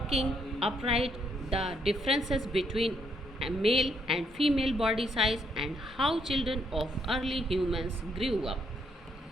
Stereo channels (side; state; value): both; normal; correlation 0.73